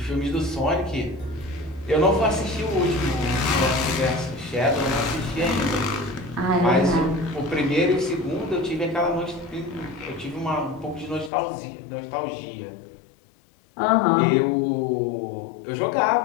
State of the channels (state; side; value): drops out; right; at 11.3 s